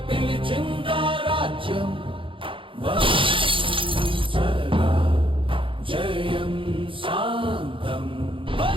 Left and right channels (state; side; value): late; left; 0.25 ms